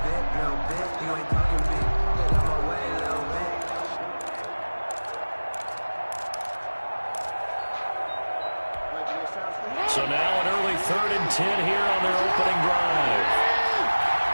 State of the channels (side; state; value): both; inverted; correlation -1.00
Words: So now an early 3rd and 10 here on their opening drive.